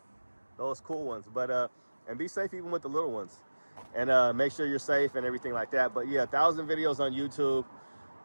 those cool ones. But and be safe even with the little ones, and make sure you're safe and everything like that. But yeah, 1,000 videos on YouTube.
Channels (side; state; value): both; inverted; correlation -1.00